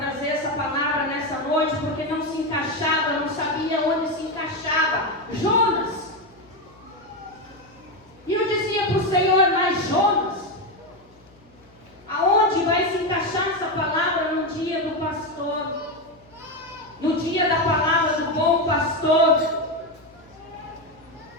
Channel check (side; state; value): left; noise; hum, 29 dB below the sound